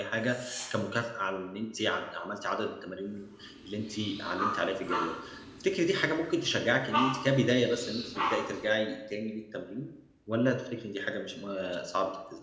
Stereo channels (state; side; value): identical; both; correlation 1.00